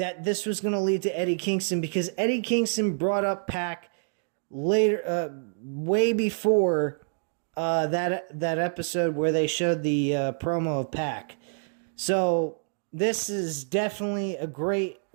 this was going to lead to Eddie Kingston because Eddie Kingston brought up Pac later, way before that episode where they showed the promo of Pac. So this is definitely a great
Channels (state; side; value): silent; left; digital silence